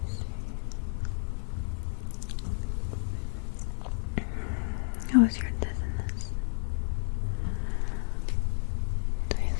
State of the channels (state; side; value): silent; right; 57 dB below the other